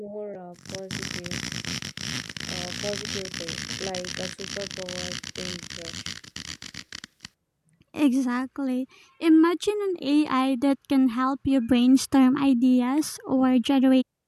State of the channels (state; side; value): identical; both; correlation 1.00